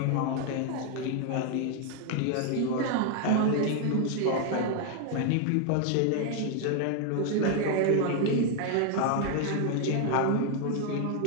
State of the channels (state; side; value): different; both; correlation 0.00